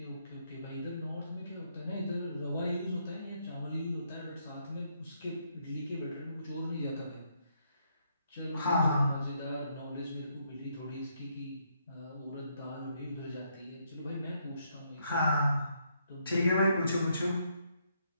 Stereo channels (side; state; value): both; inverted; correlation -0.74